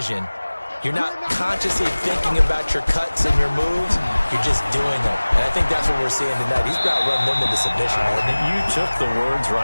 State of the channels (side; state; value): both; inverted; correlation -1.00